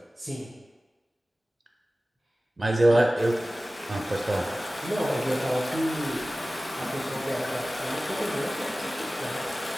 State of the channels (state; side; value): normal; both; correlation 0.97